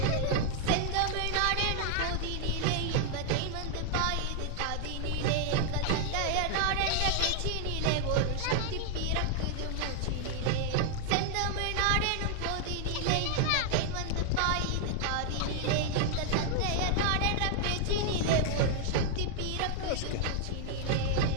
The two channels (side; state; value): both; different; correlation 0.00